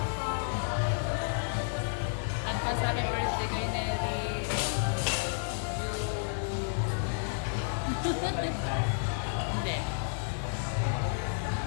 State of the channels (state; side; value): silent; right; 57 dB below the other